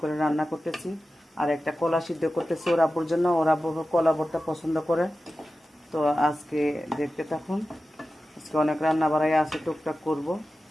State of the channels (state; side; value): normal; both; correlation 0.94